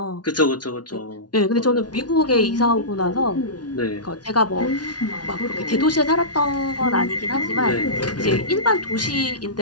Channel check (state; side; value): late; right; 0.69 ms